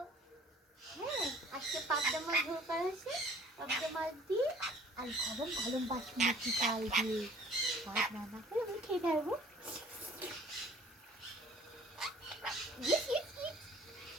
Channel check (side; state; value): both; normal; correlation 0.52